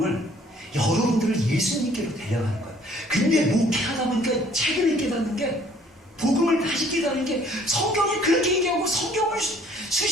여러분들을 예수님께로 데려가는 거예요. 근데 목회하다 보니까 최근에 깨닫는 게 복음을 다시 깨닫는 게 성경이 그렇게 얘기하고 성경을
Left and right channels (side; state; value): both; normal; correlation 0.58